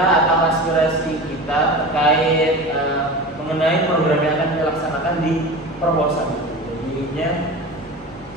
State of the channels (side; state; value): both; normal; correlation 0.31